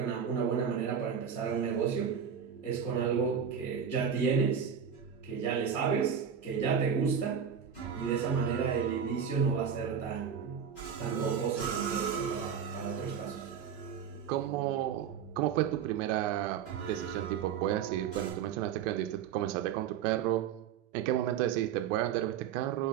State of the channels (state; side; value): quieter; left; 7.8 dB